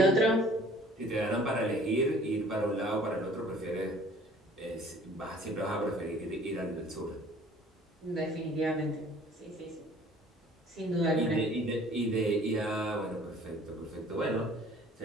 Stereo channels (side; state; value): both; normal; correlation 0.52